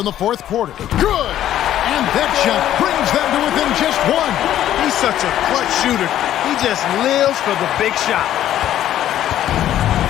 the fourth quarter. Good! And that shot brings them to within just one. He's such a clutch shooter. He just lives for the big shot.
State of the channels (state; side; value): quieter; right; 12.0 dB